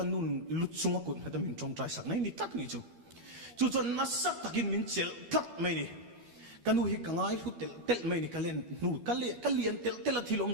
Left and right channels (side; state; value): left; late; 12 ms